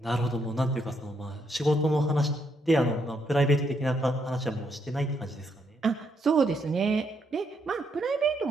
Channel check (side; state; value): both; normal; correlation 0.76